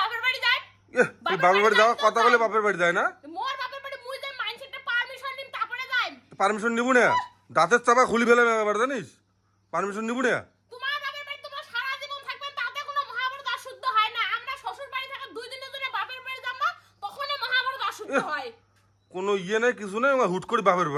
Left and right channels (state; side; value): identical; both; correlation 1.00